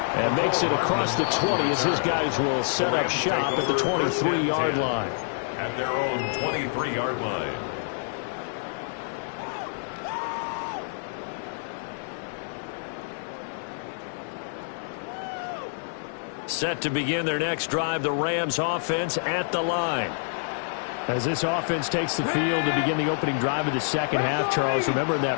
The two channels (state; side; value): silent; right; digital silence